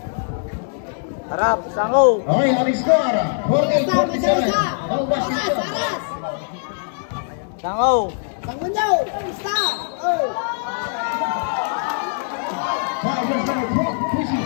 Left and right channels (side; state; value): right; silent; digital silence